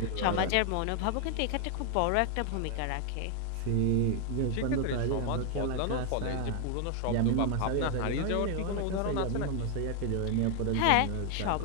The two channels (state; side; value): different; both; correlation 0.00